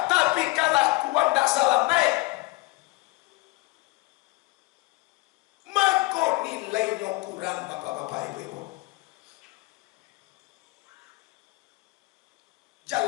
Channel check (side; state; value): right; quieter; 23.3 dB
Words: tapi kalakuan tak salah naik. Nilainya kurang bapak-bapak ibu-ibu.